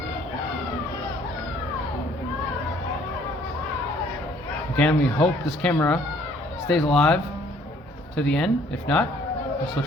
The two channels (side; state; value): both; normal; correlation 0.60